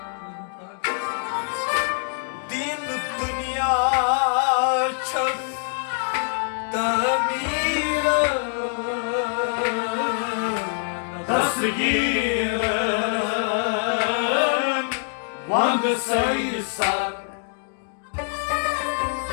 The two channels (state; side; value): silent; right; digital silence